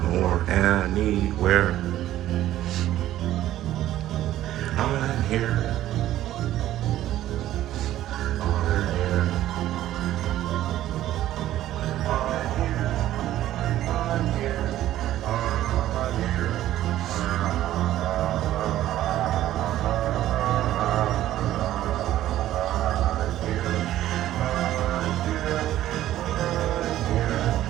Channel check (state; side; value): quieter; left; 13.5 dB